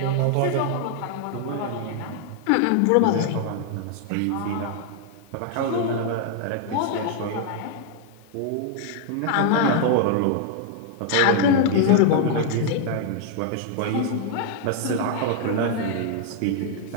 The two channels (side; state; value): both; different; correlation 0.00